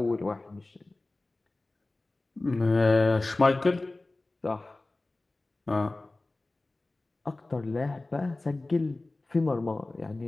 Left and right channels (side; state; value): right; quieter; 3.0 dB